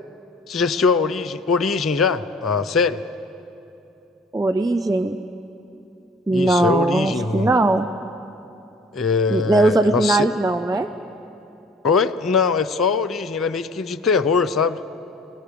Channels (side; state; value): both; normal; correlation 0.51